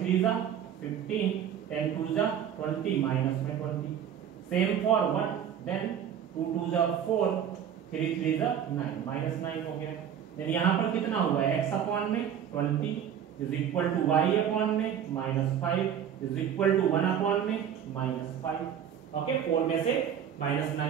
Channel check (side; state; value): left; quieter; 8.9 dB